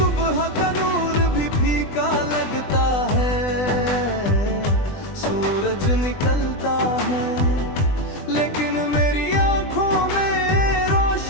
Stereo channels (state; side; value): late; right; 20 ms